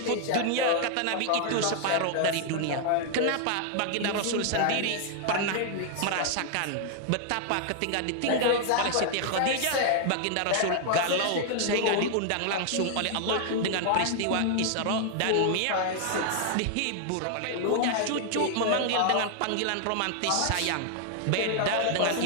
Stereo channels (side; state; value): both; different; correlation 0.00